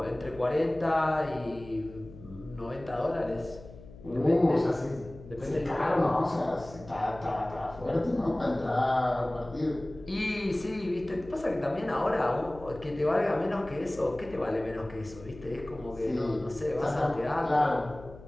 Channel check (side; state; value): left; noise; hum, 18 dB below the sound